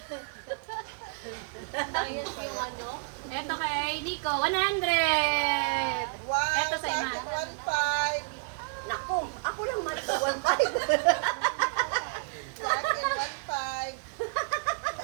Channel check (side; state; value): left; quieter; 38.4 dB